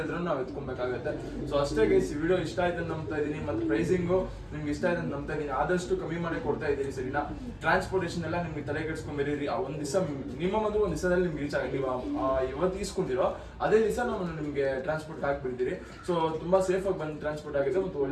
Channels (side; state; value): both; identical; correlation 1.00